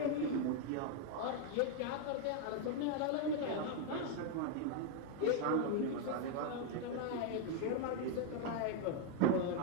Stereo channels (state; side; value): different; both; correlation 0.01